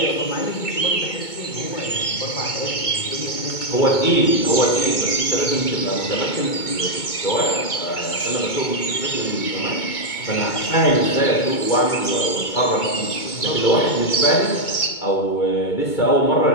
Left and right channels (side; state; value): right; late; 2.2 ms